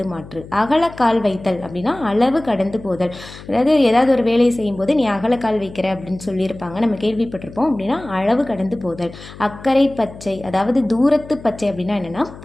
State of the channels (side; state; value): left; noise; hum, 17 dB below the sound